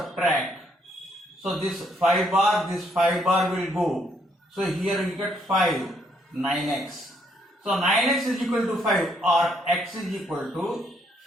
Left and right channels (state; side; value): normal; both; correlation 0.71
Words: So this 5 bar will go. So here we get 5. 9x. So 9x is equal to 5 or x is equal to